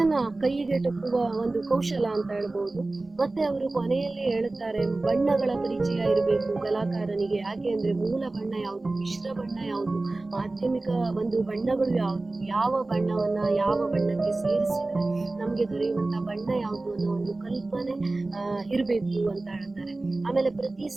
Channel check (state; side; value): quieter; left; 3.1 dB